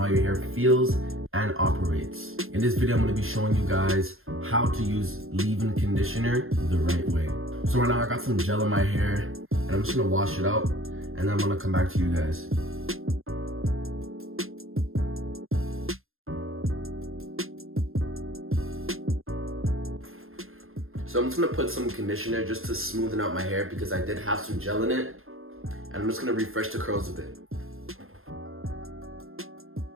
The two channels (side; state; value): left; late; 0.61 ms